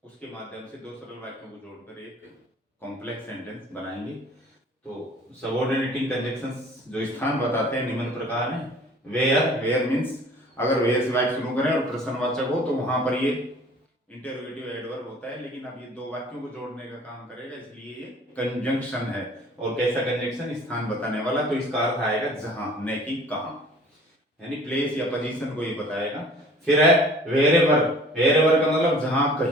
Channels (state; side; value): normal; both; correlation 0.50